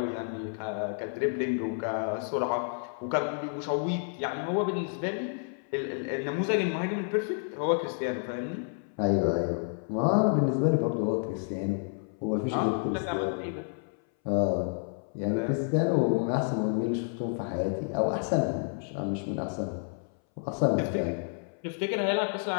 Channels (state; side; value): silent; right; 58 dB below the other